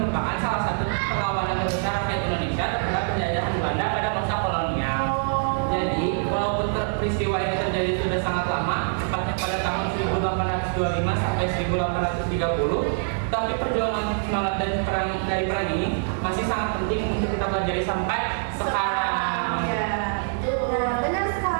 salah satu perlawanan terbesar rakyat Indonesia terhadap penjajahan Belanda pada masa kolonial. Jadi, walaupun peristiwa ini terjadi sudah sangat lama, tepatnya pada tahun 1825 sampai 1830, tapi perjuangan semangat dari perang ini masih sangat penting untuk kita pelajari sampai sekarang. Ya, Nah, benar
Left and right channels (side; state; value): left; silent; digital silence